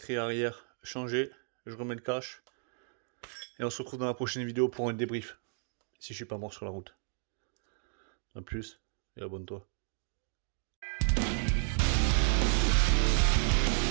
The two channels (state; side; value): silent; left; digital silence